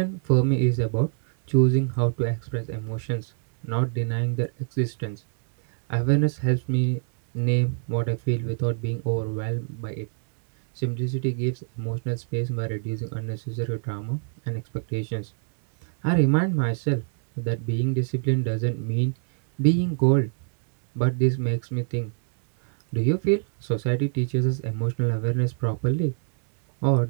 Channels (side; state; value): left; silent; digital silence